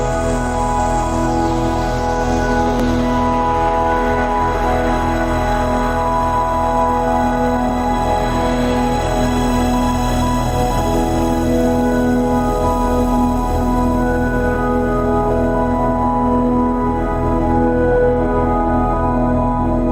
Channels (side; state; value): both; identical; correlation 1.00